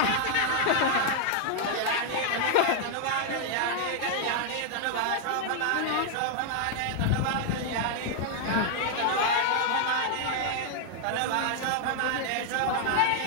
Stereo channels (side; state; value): both; different; correlation 0.00